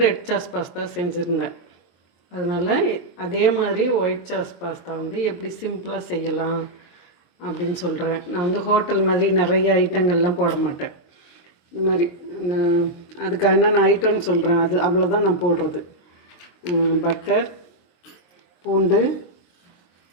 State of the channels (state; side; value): late; right; 23 ms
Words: ரெட் சாஸ் பாஸ்தா செஞ்சுருந்தேன். அதனால் அதே மாதிரி ஒயிட் சாஸ் பாஸ்தா எப்படி சிம்பிளாக செய்யலாம் அப்படின்னு சொல்கிறேன். நான் ஹோட்டல் மாதிரி நிறைய ஐட்டங்கள்லாம் போட மாட்டேன். இந்த மாதிரி அதுக்கு என்னென்ன ஐட்டம்னு சொல்கிறேன். அது அவ்வளோதான் நான் போடுறது. பட்டர், பூண்டு,